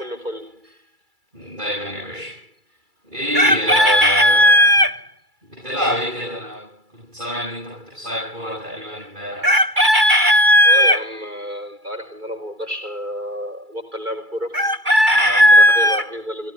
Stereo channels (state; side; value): late; left; 2.3 ms